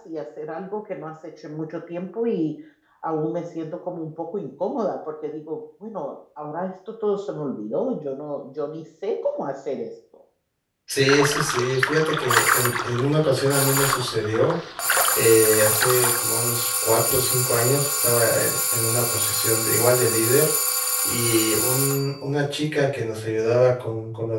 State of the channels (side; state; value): both; identical; correlation 1.00